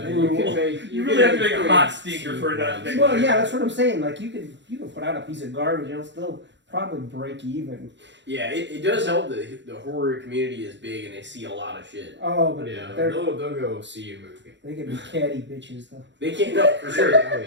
You really have to make a hot stinker for that. Well, yeah, that's what I'm saying. Like you can put out a piece of garbage and it'll still probably break even. Yeah, it does help that the horror community is big and they see a lot of shit. Oh, but Yeah, they're they'll go see a movie. they can be catty bitches though. They can't, no, for sure. Oh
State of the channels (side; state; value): left; late; 0.53 ms